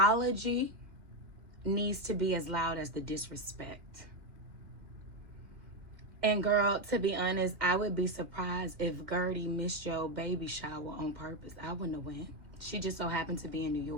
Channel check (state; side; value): late; left; 2.3 ms